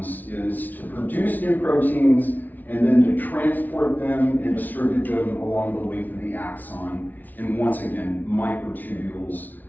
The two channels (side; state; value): right; late; 0.081 ms